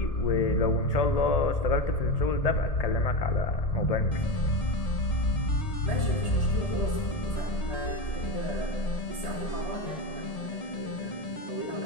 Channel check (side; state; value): right; late; 1.8 ms